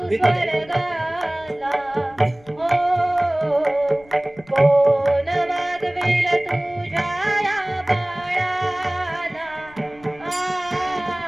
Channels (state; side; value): noise; left; rumble, 26 dB below the sound